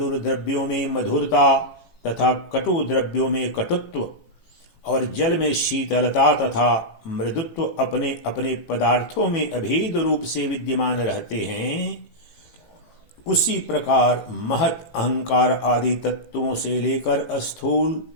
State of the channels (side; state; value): right; late; 18 ms